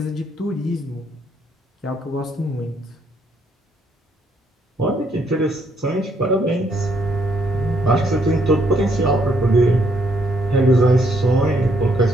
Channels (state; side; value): normal; both; correlation 0.71